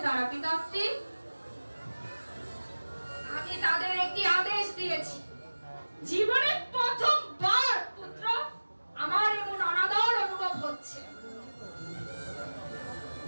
তারা পিতাশ্রী? আমি তাদের একটি আদেশ দিয়েছি। জীবনে প্রথমবার পুত্র আমার এমন অনাদর অনুভব হচ্ছে।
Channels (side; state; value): both; inverted; correlation -1.00